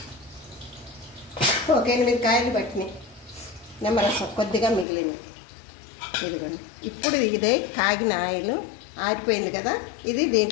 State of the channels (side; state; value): right; drops out; at 4.9 s